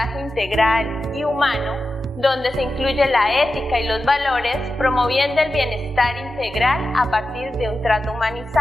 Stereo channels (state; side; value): normal; both; correlation 0.92